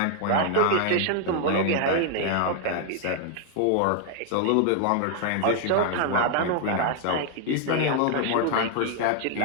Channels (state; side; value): different; both; correlation 0.00